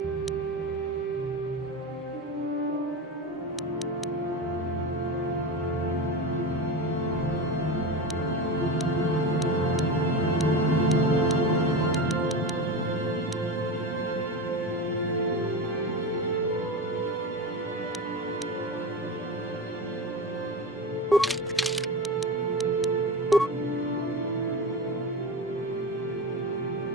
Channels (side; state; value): both; normal; correlation 0.24